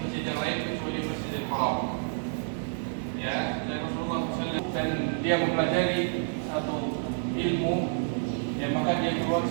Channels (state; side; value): silent; left; digital silence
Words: yang lain kecuali Masjidil Haram. Ya, dan Rasulullah SAW dan dia mempelajari satu ilmu, ya maka dia keluar